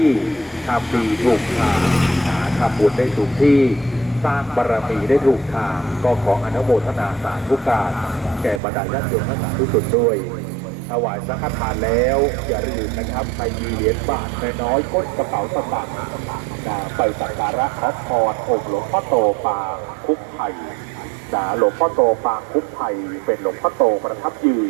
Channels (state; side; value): drops out; left; at 8.6 s